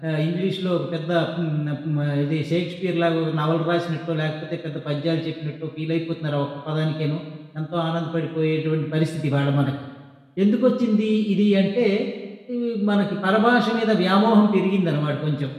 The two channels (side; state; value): both; identical; correlation 1.00